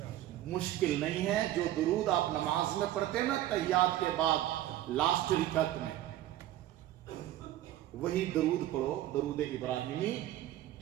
مشکل نہیں ہے. جو درود آپ نماز میں پڑھتے ہیں نا تحیات کے بعد لاسٹ رکعت میں, وہی درود پڑھو, درود ابراہیمی.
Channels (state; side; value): quieter; left; 13.6 dB